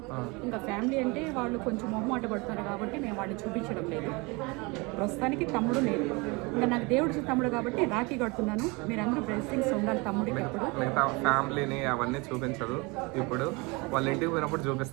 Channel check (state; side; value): quieter; left; 26.9 dB